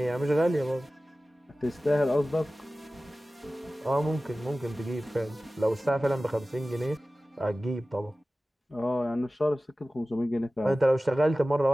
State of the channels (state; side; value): normal; both; correlation 0.96